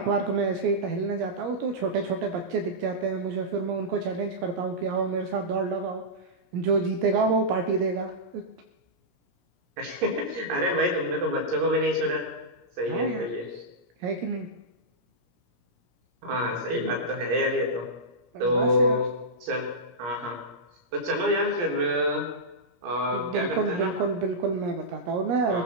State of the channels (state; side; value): late; left; 17 ms